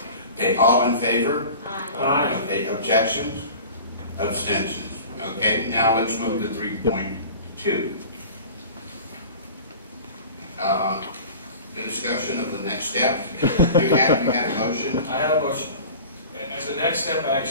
Okay, all in favor? Aye. Okay, objections? Abstentions. Okay, now let's move to 3.2. The discussion of the next step. You had a motion? I have a motion. As a next step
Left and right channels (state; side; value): inverted; both; correlation -0.39